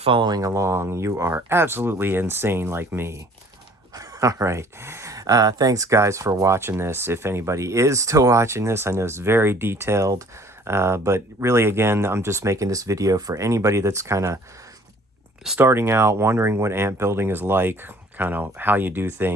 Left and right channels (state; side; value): normal; both; correlation 0.54